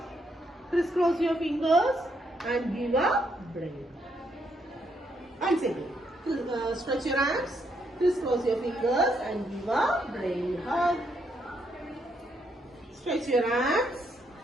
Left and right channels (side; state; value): both; normal; correlation 0.76